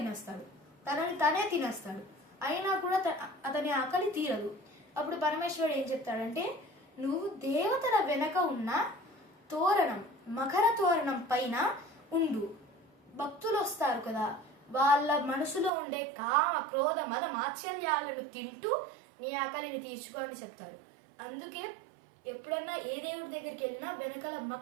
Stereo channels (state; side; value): drops out; left; at 15.7 s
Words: తనని తనే తినేస్తాడు. అయినా కూడా అతని ఆకలి తీరదు. అప్పుడు పరమేశ్వరుడు ఏం చెప్తాడంటే, నువ్వు దేవతల వెనక ఉన్న తోరణం, మకర తోరణం పైన ఉండు. భక్తులు వస్తారు కదా, వాళ్ళ మనసులో ఉండే కామ క్రోధ మద మాత్సల్యాలను తింటూ నీ ఆకలిని తీర్చుకో అని చెప్తాడు. అందుకే ఎప్పుడన్నా ఏ దేవుడి దగ్గరికి వెళ్ళినా వెనకాల